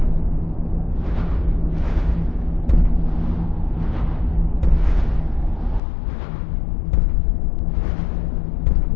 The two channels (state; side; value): drops out; right; at 5.8 s